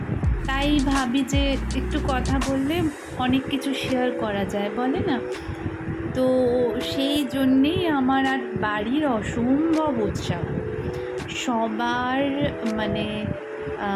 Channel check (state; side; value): identical; both; correlation 1.00